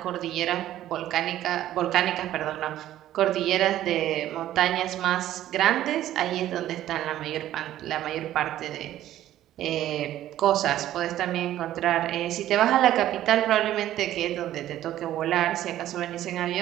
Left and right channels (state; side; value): quieter; left; 13.0 dB